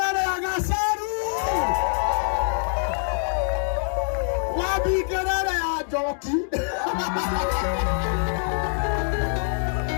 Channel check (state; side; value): silent; right; digital silence